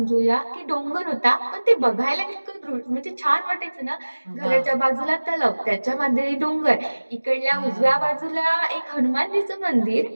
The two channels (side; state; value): both; inverted; correlation -1.00